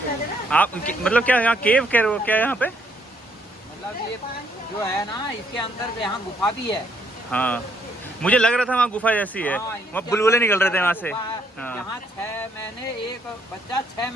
आप मतलब क्या यहाँ केव कह रहे हो क्या यहाँ पे? मतलब ये जो है ना इसके अंदर यहाँ गुफा भी है। हाँ मुझे लग रहा था वहाँ गुफा जैसी है, हाँ, वहाँ बुलबुले निकल रहे थे वहाँ से। हाँ। यहाँ 6 महीने एक बच्चा 6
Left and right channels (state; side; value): normal; both; correlation 0.70